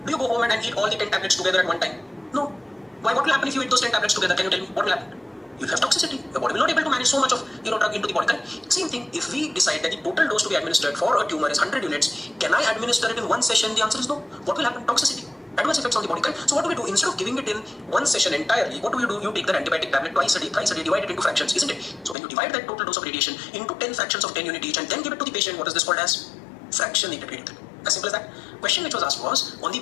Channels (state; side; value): drops out; right; at 22.2 s